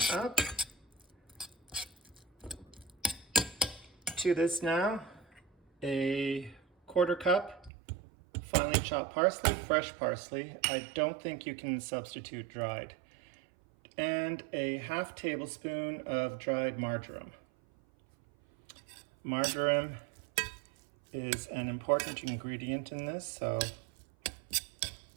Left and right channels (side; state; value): left; drops out; at 7.7 s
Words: up. To this now, a quarter cup finely chopped parsley, fresh parsley. I don't think you can substitute dried. And a half tablespoon of dried marjoram. Marjoram is an important ingredient in this, so